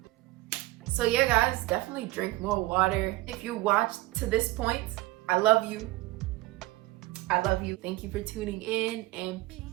So yeah, guys, definitely drink more water. If you watched to this point, I love you. I love you. Thank you for tuning in, and peace.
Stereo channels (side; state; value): left; quieter; 19.2 dB